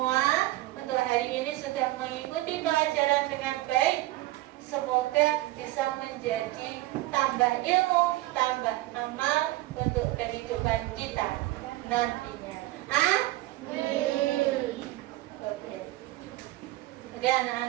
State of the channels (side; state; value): left; quieter; 18.0 dB